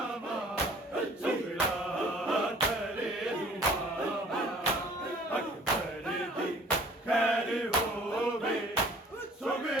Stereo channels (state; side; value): normal; both; correlation 0.52